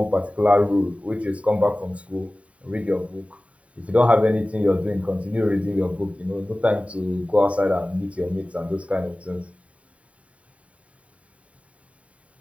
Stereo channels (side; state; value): left; late; 0.066 ms